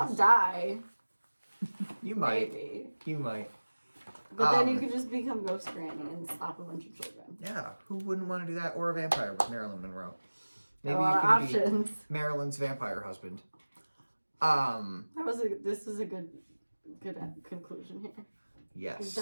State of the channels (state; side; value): inverted; both; correlation -1.00